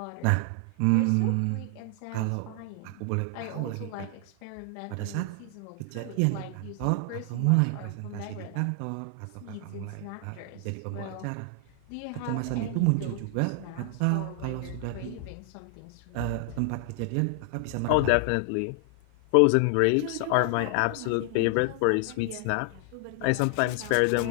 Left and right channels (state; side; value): different; both; correlation 0.00